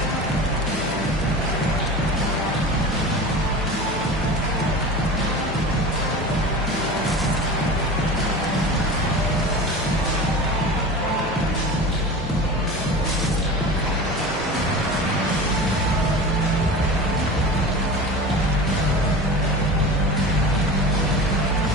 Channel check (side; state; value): both; normal; correlation 0.32